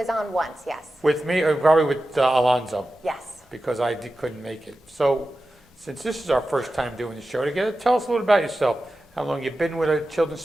on once, yes. With me, or probably with Alonzo? Yes. Because I couldn't make it. So since this is our first time doing the show together, tell us a little about yourself. How long you've been with a Children's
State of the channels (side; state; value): both; normal; correlation 0.93